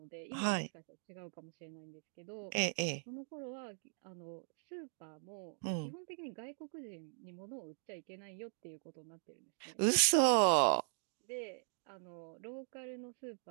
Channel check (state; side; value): silent; left; digital silence